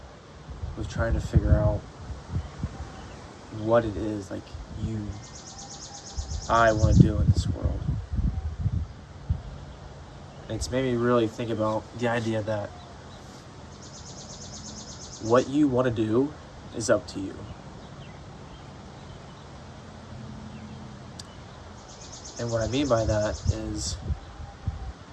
with trying to figure out what it is I want to do in this world. And it's made me really think about the idea that what you want to do is up to you. And what I mean by that is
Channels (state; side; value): identical; both; correlation 1.00